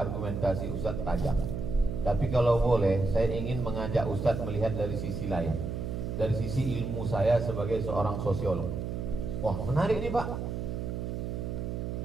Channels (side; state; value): right; noise; hum, 4 dB below the sound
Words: Ustadz tajam. Tapi kalau boleh, saya ingin mengajak Ustadz melihat dari sisi lain, dari sisi ilmu saya sebagai seorang sosiolog. Wah, menarik nih Pak.